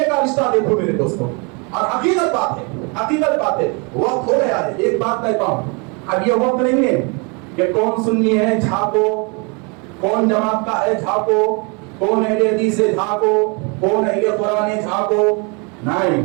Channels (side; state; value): left; quieter; 32.7 dB